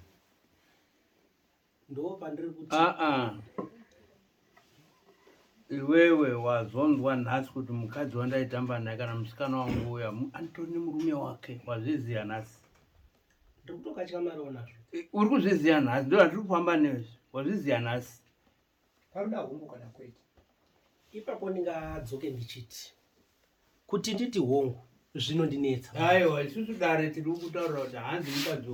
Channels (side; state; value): both; identical; correlation 1.00